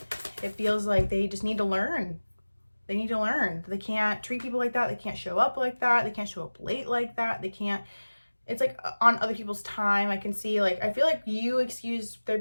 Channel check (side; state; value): both; inverted; correlation -1.00